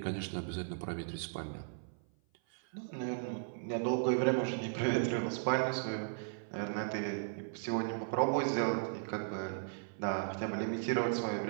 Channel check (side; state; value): left; silent; 54 dB below the other